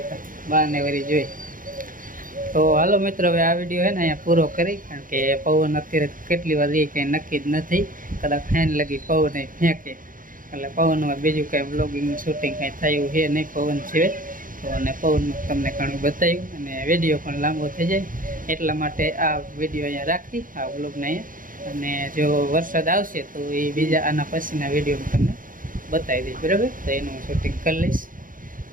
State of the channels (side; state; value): left; late; 0.40 ms